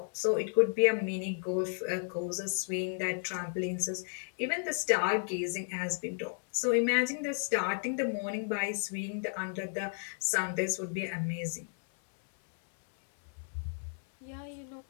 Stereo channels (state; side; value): silent; right; 56 dB below the other